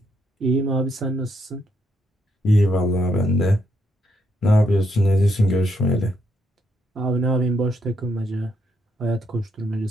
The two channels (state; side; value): normal; both; correlation 0.76